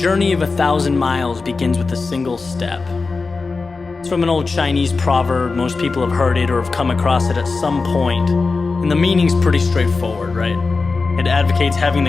of 1,000 miles begins with a single step. It's from an old Chinese proverb. Most people have heard it or have come across it at some point. And the meaning's pretty straightforward, right? It advocates having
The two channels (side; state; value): right; quieter; 4.2 dB